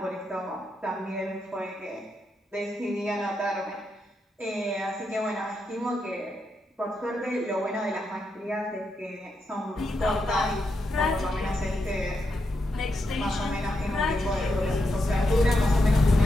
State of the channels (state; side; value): normal; both; correlation 0.84